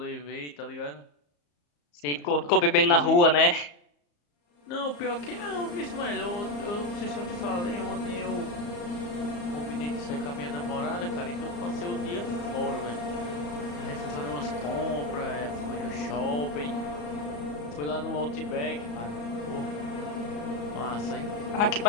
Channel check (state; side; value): late; right; 34 ms